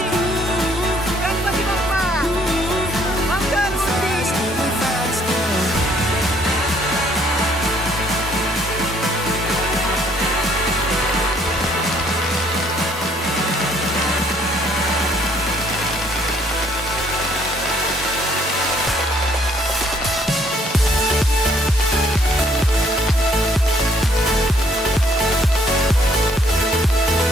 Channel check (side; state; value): both; normal; correlation 0.64